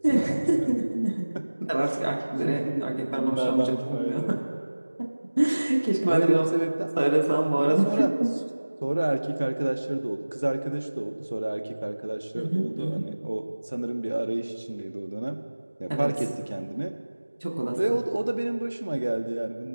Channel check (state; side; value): inverted; both; correlation -1.00